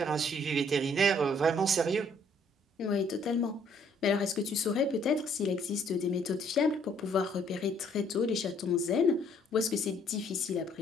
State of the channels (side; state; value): both; normal; correlation 0.63